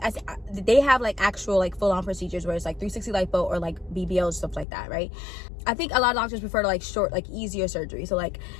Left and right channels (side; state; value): right; drops out; at 4.7 s